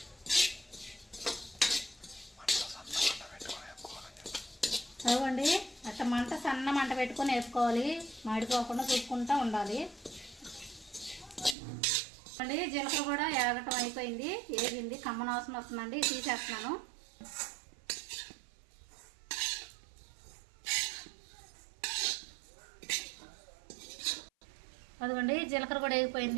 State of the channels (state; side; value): drops out; left; at 11.6 s